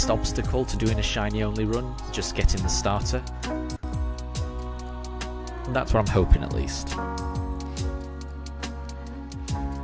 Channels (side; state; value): both; identical; correlation 1.00